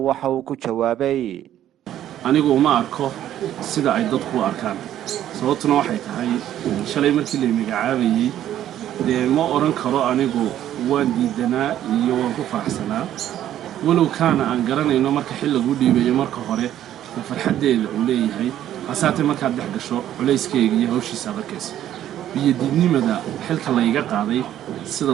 uu ku jawaabay anigu ma arko sida ay dadku arkaan sababtuna waxay tahay shalay markii la magacaabayay ma oran karo anigu waan diidanaa iyo waan ku faraxsanaa walow kaana aan garanayno marka xil lagu dhiibayo marka hore farxadeeda uu leeyahay asaatay marka dhex gasho culeyskeega iyo hawshiisa adkeys biyadiidnimada xilka la iga qaaday sida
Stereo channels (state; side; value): quieter; left; 11.7 dB